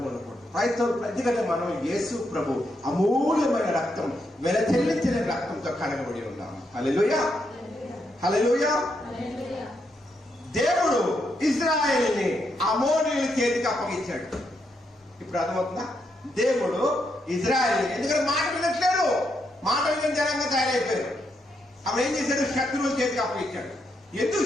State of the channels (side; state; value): both; normal; correlation 0.80